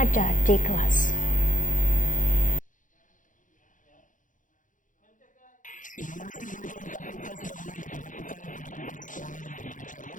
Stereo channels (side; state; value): right; late; 0.38 ms